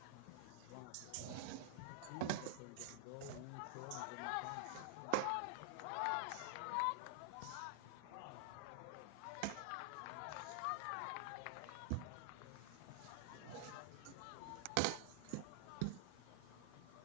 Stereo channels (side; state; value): both; different; correlation -0.01